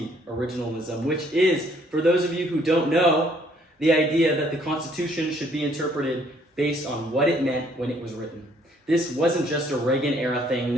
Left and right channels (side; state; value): both; normal; correlation 0.64